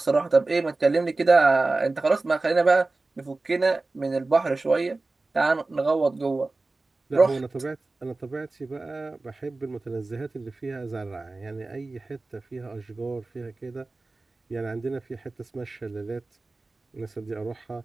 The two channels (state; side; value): quieter; left; 3.3 dB